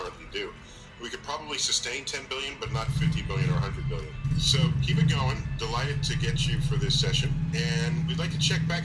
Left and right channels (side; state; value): both; identical; correlation 1.00